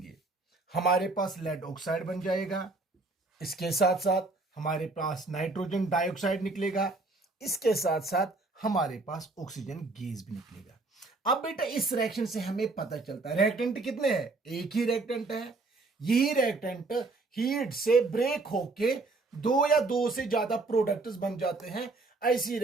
हमारे पास लेड ऑक्साइड बन जाएगा। इसके साथ साथ हमारे पास नाइट्रोजन डाइऑक्साइड निकलेगा, इसके साथ साथ हमारे पास ऑक्सीजन गैस भी निकलेगा। अब बेटा इस रिएक्शन से हमें पता चलता है रिएक्टेंट कितने हैं, एक ही रिएक्टेंट है। यही रिएक्टेंट हीट से ब्रेक होके दो या दो से ज्यादा प्रोडक्ट्स बन जाते हैं। ऐसी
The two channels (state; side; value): quieter; left; 3.4 dB